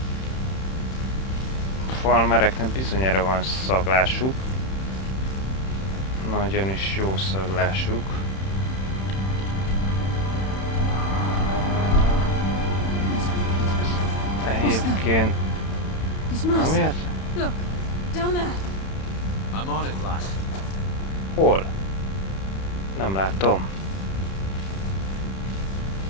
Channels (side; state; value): right; late; 31 ms